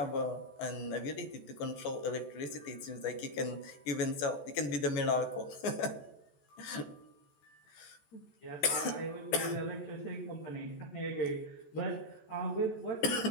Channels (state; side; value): late; right; 14 ms